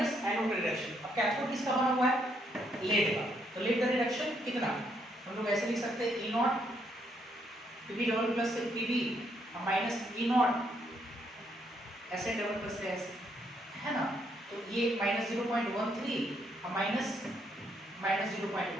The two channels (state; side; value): normal; both; correlation 0.73